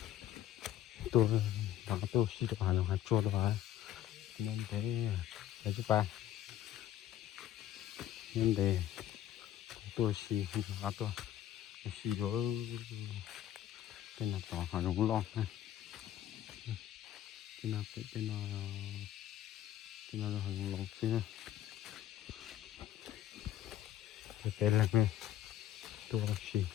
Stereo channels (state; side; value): quieter; right; 12.2 dB